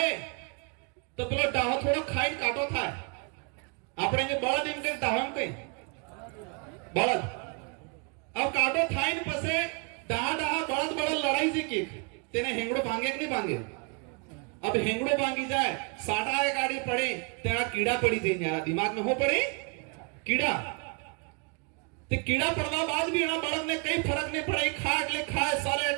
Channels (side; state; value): left; quieter; 35.0 dB